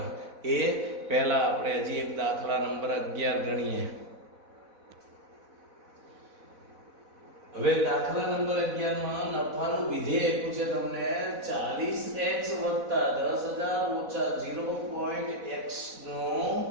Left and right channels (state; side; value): late; left; 4.0 ms